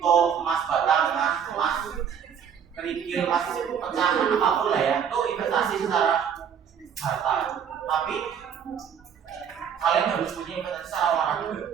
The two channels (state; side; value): quieter; left; 7.8 dB